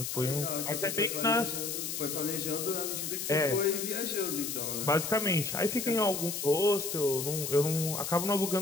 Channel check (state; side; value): noise; left; hiss, 4 dB below the sound